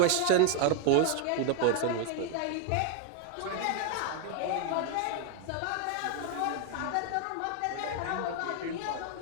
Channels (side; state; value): both; different; correlation 0.01